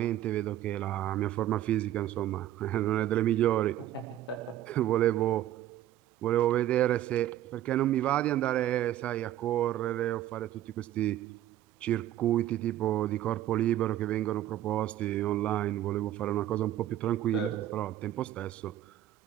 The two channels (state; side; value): quieter; left; 12.8 dB